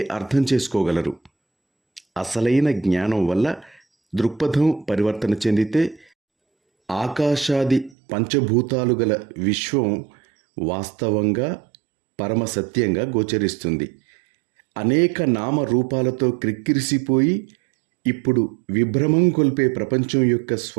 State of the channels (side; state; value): left; drops out; at 8.0 s